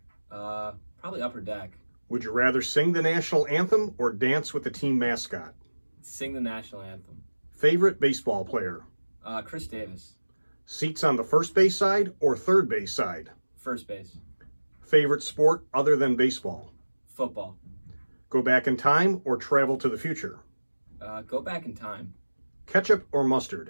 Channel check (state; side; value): inverted; both; correlation -1.00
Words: Probably upper deck. Would you rather sing the national anthem or dance with the team mascot? Sing the national anthem. Favorite baseball player? Chris Davis. Seats on the first base side or third base side? First base. Favorite sport other than baseball? Football. Go back in time or travel to the future? Go back in time. Ketchup or